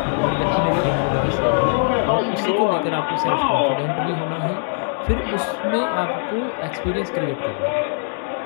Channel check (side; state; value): right; silent; digital silence